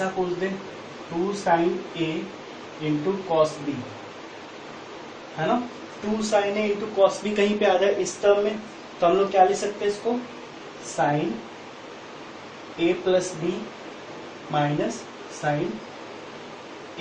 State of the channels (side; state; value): both; identical; correlation 1.00